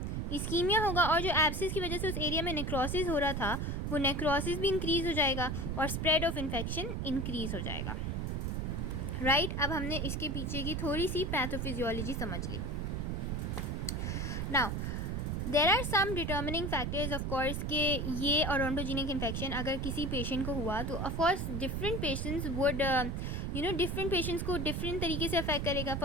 और जो एब्सिस की वजह से उस एरिया में नेक्रोसिस हो रहा था, वो नेक्रोसिस भी इंक्रीज़ हो जाएगा और स्प्रेड ऑफ इन्फेक्शन इंक्रीज़ हो जाएगा, राइट। अब हमने इसके पीछे की थोड़ी सी पैथोफिजियोलॉजी समझ ली। Now there are some determining factors of course के ये ओडोंटोजेनिक इन्फेक्शन अगर किसी पेशेंट को हुआ तो of course different patients would different patients को डिफरेंट तरीके से अफेक्ट करेगा।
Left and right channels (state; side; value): noise; right; rumble, 1 dB below the sound